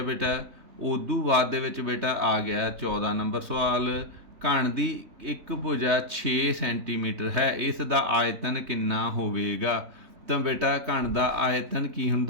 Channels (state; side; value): late; left; 3.2 ms